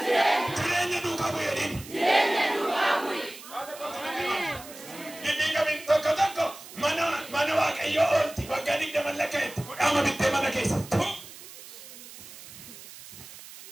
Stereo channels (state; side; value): noise; right; hiss, 16 dB below the sound